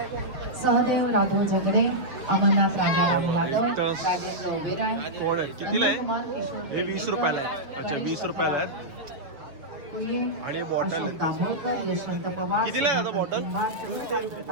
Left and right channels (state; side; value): late; left; 6.7 ms